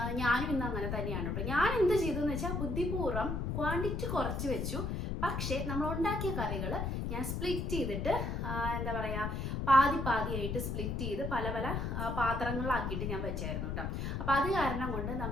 ഞാനും ഇന്ന് അങ്ങനെ തന്നെയാണ് കേട്ടോ. ഞാൻ എന്ത് ചെയ്തു എന്ന് വെച്ചാൽ ബുദ്ധിപൂർവ്വം ക്വാണ്ടിറ്റി കുറച്ച് വെച്ചു. പക്ഷേ നമ്മൾ ഉണ്ടാക്കിയ കറികൾ ഞാൻ സ്പ്ലിറ്റ് ചെയ്തിട്ട്, എന്താ പറയുക, പാതിയായിട്ട് സ്പ്ലിറ്റ് ചെയ്ത് പല പല പാത്രങ്ങളിലാക്കിയിട്ട് ഞാൻ വെച്ചായിരുന്നു കേട്ടോ. അപ്പോൾ അത് കാരണം കൊണ്ട്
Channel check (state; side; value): noise; left; rumble, 2 dB below the sound